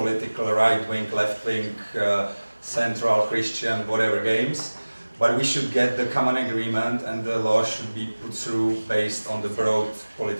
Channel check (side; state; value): both; inverted; correlation -1.00